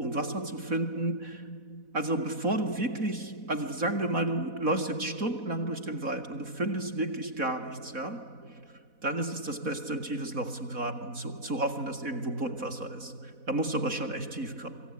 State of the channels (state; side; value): late; left; 4.1 ms